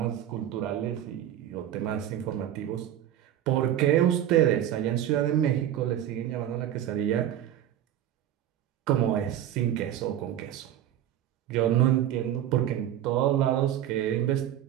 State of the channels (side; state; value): left; quieter; 11.3 dB